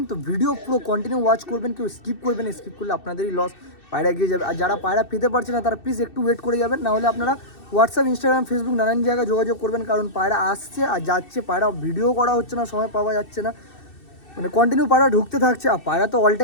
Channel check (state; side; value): late; right; 2.6 ms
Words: তো ভিডিও পুরো কন্টিনিউ ওয়াচ করবেন, কেউ স্কিপ করবেন, স্কিপ করলে আপনাদেরই লস, পায়রা এগিয়ে যাবে। আর যারা পায়রা পেতে পারছে না তারা প্লিজ একটু ওয়েট করে যাবেন, নাহলে আপনারা হোয়াটসঅ্যাপ, ইনস্টাগ্রাম, ফেসবুক নানান জায়গায় যোগাযোগ করবেন, কারণ পায়রা আসছে আর যাচ্ছে, পায়রা ভিডিও করা হচ্ছে না, সময় পাওয়া যাচ্ছে না, মানে কন্টিনিউ পায়রা ঢুকতে থাকছে। আর পায়রা তো অল